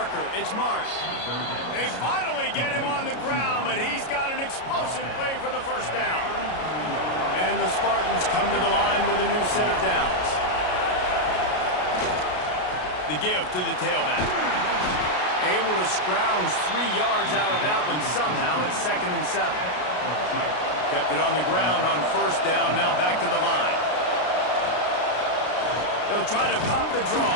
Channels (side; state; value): right; late; 33 ms